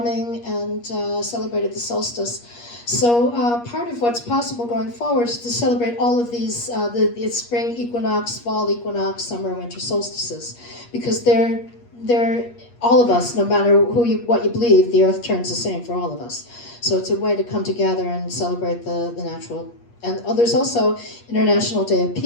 and celebrated the solstice. So part of what's possible going forward is to celebrate all of these, the spring equinox, fall equinox, summer, winter solstices, because they're all of us, no matter what you believe, the earth turns the same for all of us. So it's a way to come together and celebrate the natural. And there's also International Day of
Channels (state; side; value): late; right; 8.4 ms